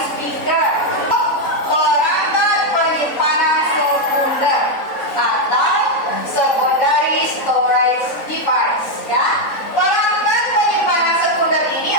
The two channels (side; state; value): right; late; 3.7 ms